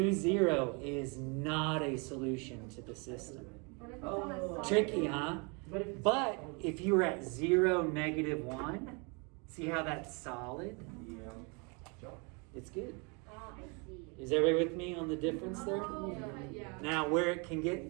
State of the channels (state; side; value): quieter; left; 32.6 dB